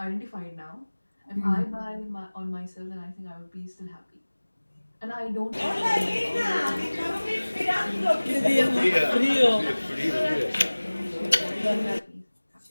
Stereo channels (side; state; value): both; inverted; correlation -1.00